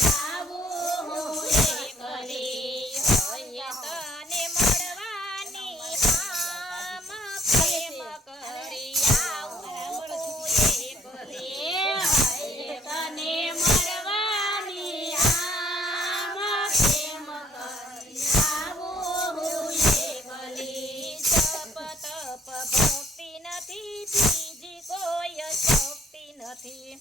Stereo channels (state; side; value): normal; both; correlation 0.63